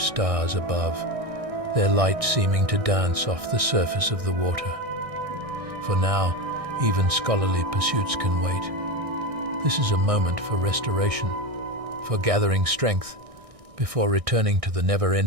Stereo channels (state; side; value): late; left; 1.6 ms